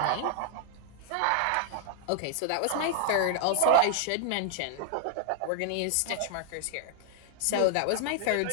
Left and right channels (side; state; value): both; different; correlation 0.00